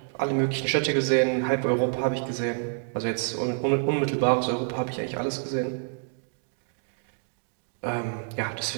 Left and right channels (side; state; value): left; silent; 60 dB below the other